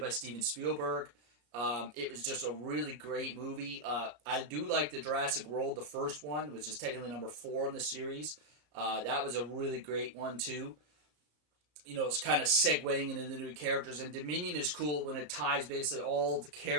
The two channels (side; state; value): left; late; 34 ms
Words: Steven Spielberg. It was just a really great movie. I do like the Jurassic World, the first one, which is technically number 4 in the series. That was a really great one, too. It's kind of segueing into the new characters. And Dominion is cool when it ties basically all the